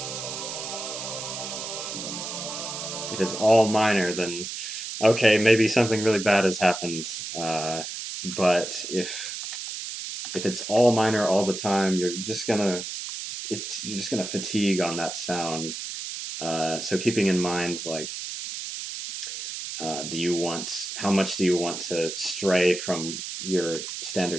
if it's all minor, then okay, maybe something really bad has happened. But if it's all minor all the time, you're just gonna fatigue on that sound. So keeping in mind, like, how much do you want to stray from your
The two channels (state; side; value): noise; right; hiss, 7 dB below the sound